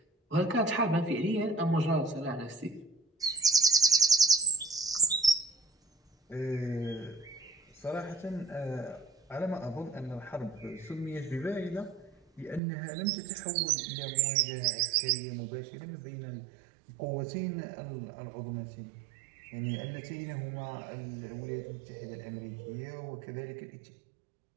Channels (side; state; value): left; drops out; at 12.6 s